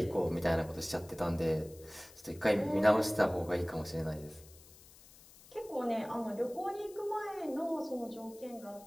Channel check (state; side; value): noise; left; hiss, 22 dB below the sound